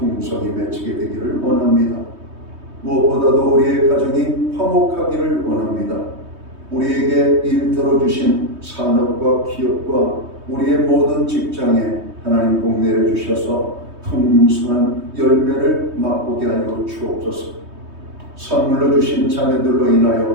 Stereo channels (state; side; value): late; left; 3.2 ms